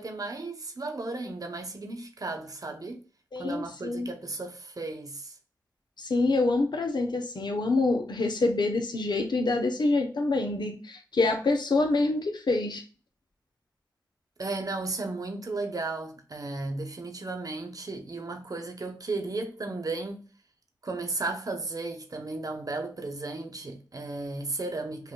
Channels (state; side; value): normal; both; correlation 0.76